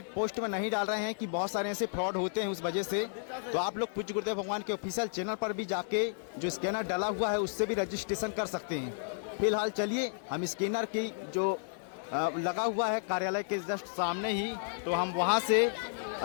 पोस्ट में नहीं डाल रहे हैं कि बहुत सारे ऐसे फ्रॉड होते हैं उस वजह से। तो आप लोग पूज्य गुरुदेव भगवान के ऑफिशियल चैनल पर भी जाके जो स्कैनर डाला हुआ है उससे भी रजिस्ट्रेशन कर सकते हैं। फिलहाल चलिए हम स्कैनर की जो लगा हुआ है कार्यालय के जस्ट सामने ही, तो हम वहाँ से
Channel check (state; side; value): silent; right; digital silence